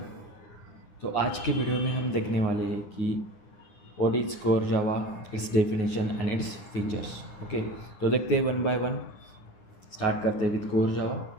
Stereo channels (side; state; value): right; late; 9.8 ms